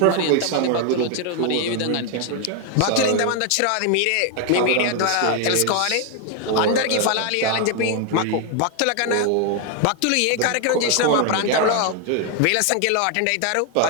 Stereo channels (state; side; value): different; both; correlation 0.00